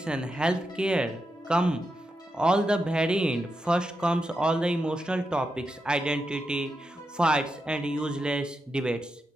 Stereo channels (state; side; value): normal; both; correlation 0.86